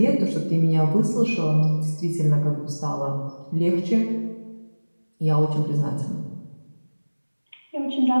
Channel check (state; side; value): inverted; both; correlation -1.00